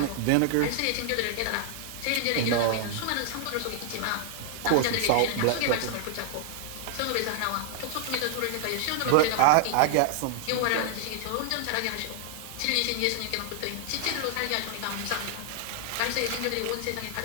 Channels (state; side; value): different; both; correlation -0.01